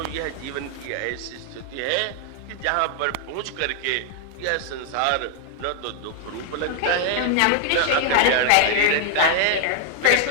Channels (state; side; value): different; both; correlation 0.00